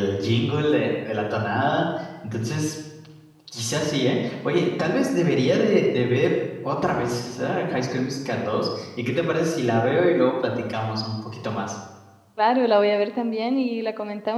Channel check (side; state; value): both; identical; correlation 1.00